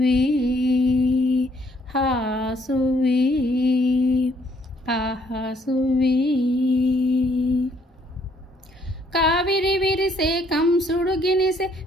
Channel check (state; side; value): normal; both; correlation 0.66